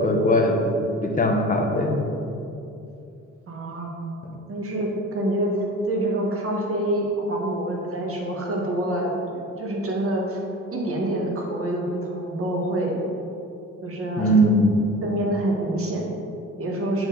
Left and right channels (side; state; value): both; normal; correlation 0.36